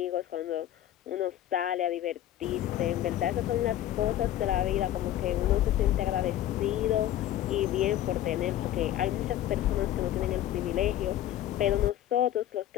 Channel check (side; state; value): right; quieter; 12.6 dB